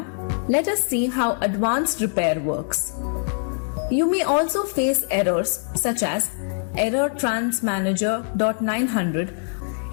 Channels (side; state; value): right; silent; 63 dB below the other